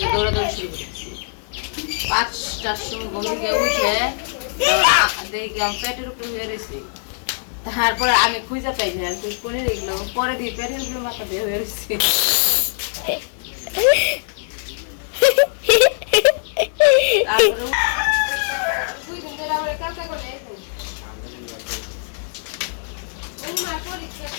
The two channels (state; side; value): silent; right; 59 dB below the other